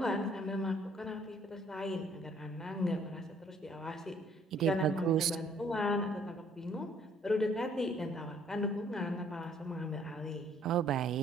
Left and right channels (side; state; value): both; normal; correlation 0.61